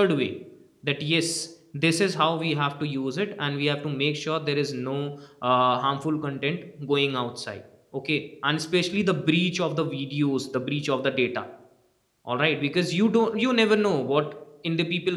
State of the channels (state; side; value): identical; both; correlation 1.00